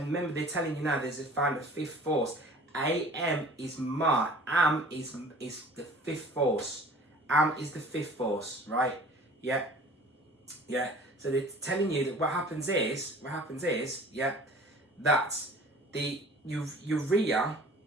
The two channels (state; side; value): normal; both; correlation 0.47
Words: remember, they're telling you now there's found a fifth force. AM is ma. Am is the fifth force. Am is the fifth force, right? Yeah, yeah. So they're telling you that what happens is, yeah, that urea,